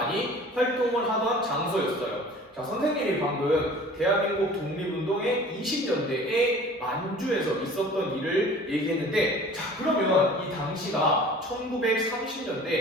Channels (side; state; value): both; normal; correlation 0.45